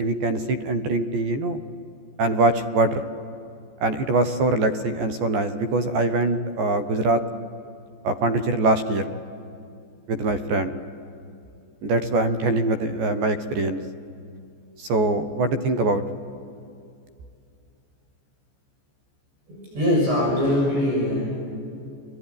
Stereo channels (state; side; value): late; left; 14 ms